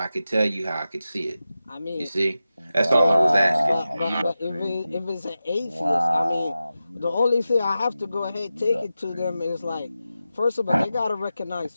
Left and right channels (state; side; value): inverted; both; correlation -0.93